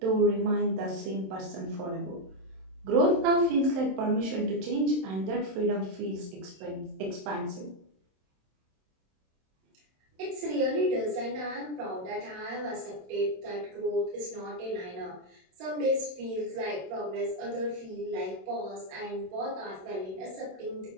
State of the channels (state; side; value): late; left; 27 ms